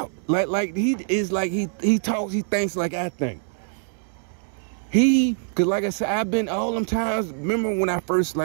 Like he talks, he thinks like I think. Because like I said, I've been all them times, remember when I first,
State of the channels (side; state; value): left; silent; 58 dB below the other